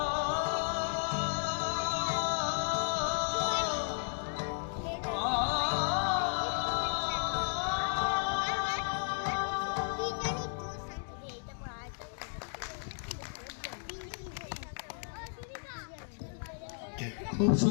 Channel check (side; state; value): right; silent; digital silence